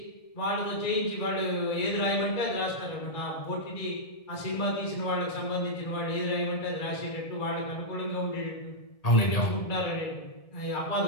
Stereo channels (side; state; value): right; late; 1.7 ms